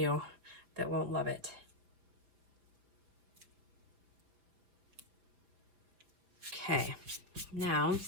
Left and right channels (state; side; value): late; left; 5.4 ms